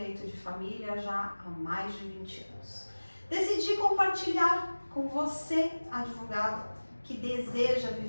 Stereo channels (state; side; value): inverted; both; correlation -1.00